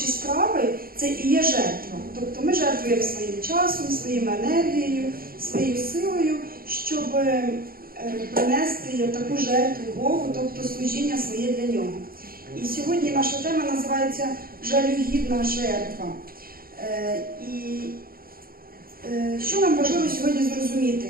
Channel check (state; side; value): late; left; 0.43 ms